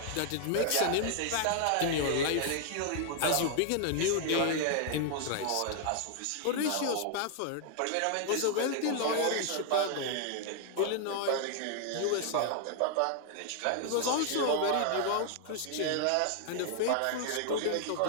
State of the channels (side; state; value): both; different; correlation 0.00